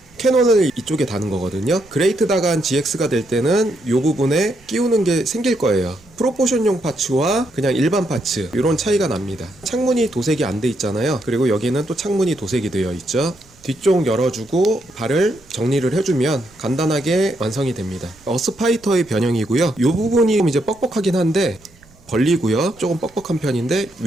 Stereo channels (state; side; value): noise; right; rumble, 28 dB below the sound